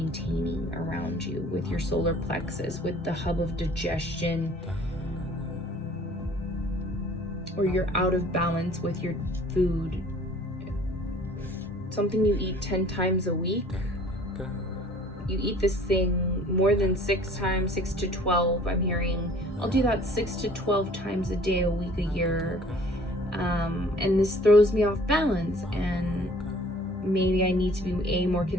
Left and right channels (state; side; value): normal; both; correlation 0.52